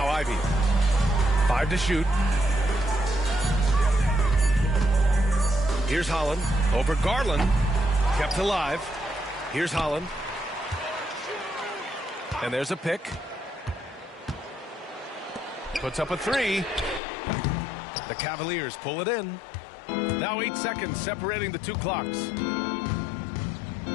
Ivy. 5 to shoot. Here's Holland over Garland. Kept alive. Here's Holland. And there's a pick. Puts up a 3. The Cavaliers pull it in. Now 8 seconds separating the 2 clocks.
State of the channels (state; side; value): drops out; right; at 17.0 s